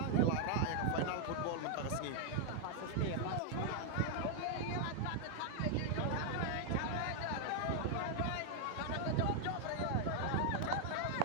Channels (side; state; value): both; different; correlation 0.00